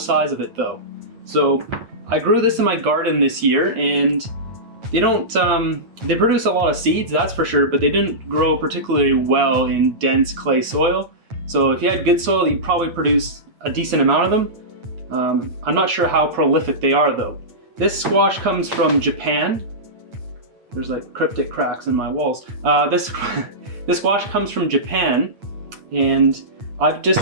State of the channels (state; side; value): late; left; 9.0 ms